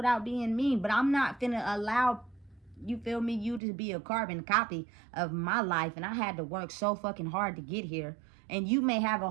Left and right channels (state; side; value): drops out; left; at 3.6 s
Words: being mean, but I'm not finna allow, you feel me, you to be a carbon copy of my life, and I had to work so fucking hard to get here. And you may have a